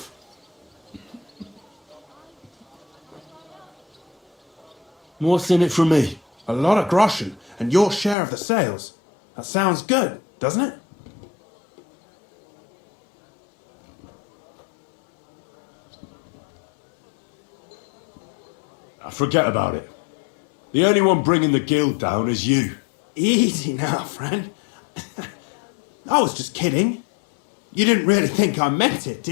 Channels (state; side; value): drops out; right; at 8.2 s